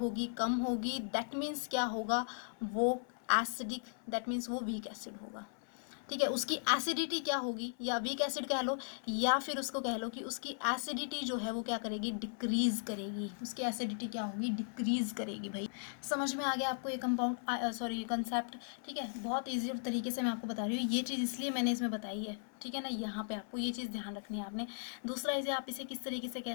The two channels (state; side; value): silent; right; 53 dB below the other